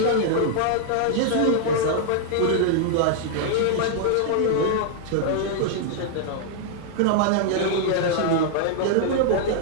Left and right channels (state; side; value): different; both; correlation -0.01